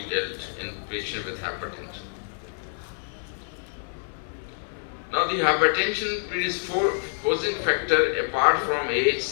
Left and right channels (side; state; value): right; silent; 57 dB below the other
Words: dealt in patients with hypertension. Now, the hypertension predisposing factor apart from age,